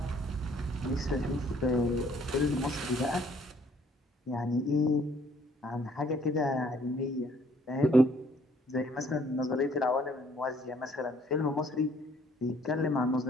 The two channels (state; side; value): normal; both; correlation 0.62